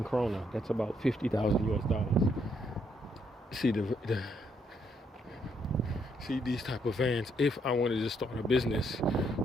krona. That's about 50,000 US dollars. See see these type of vans. If I wanted to start a business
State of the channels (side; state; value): both; normal; correlation 0.73